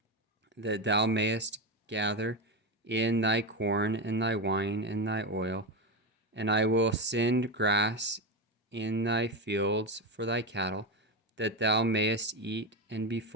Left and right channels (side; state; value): both; normal; correlation 0.14